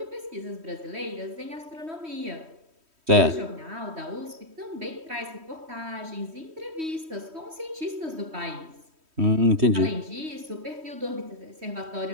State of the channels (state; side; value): late; left; 3.1 ms